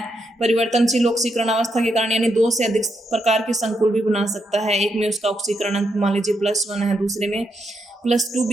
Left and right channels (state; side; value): normal; both; correlation 0.80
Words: परिवर्तनशील ऑक्सीकरण अवस्था के कारण, यानी 2 से अधिक प्रकार के संकुल भी बना सकता है। एक में उसका ऑक्सीकरण अंक मान लीजिए +1 है, दूसरे में +2